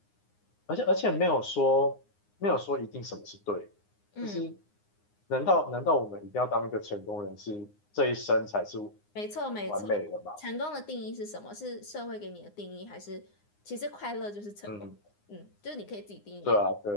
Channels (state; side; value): late; right; 9.7 ms